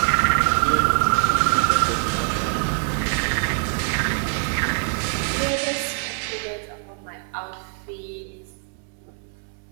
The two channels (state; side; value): silent; left; 57 dB below the other